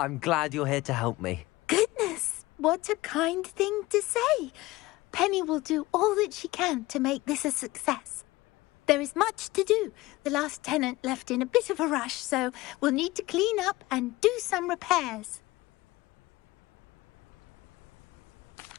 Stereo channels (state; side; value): quieter; right; 19.7 dB